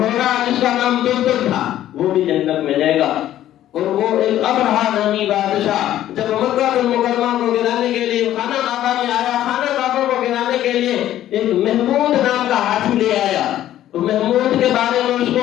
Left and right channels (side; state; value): right; quieter; 12.6 dB